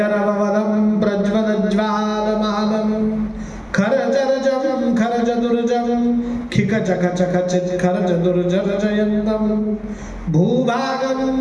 प्रज्वलज्वालमालम खरजरजम खरजदुर्जम खिकचखचखचित खरजदुर्जरजयन्तम भूभागम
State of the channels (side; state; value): both; identical; correlation 1.00